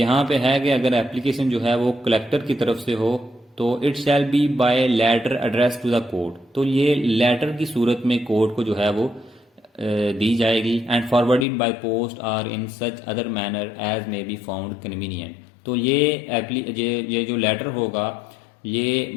پہ ہے کہ اگر ایپلیکیشن جو ہے وہ کلیکٹر کی طرف سے ہو تو it shall be by letter address to the court, تو یہ لیٹر کی صورت میں کورٹ کو جو ہے وہ دی جائے گی. And forwarded by post or in such other manner as may be found convenient, تو یہ جو لیٹر ہوگا یہ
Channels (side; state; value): right; drops out; at 11.5 s